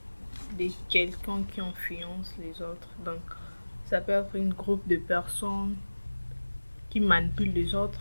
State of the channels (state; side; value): inverted; both; correlation -1.00